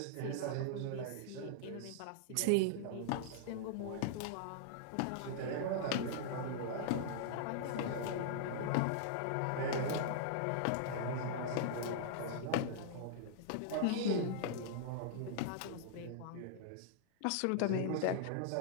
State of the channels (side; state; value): both; different; correlation -0.01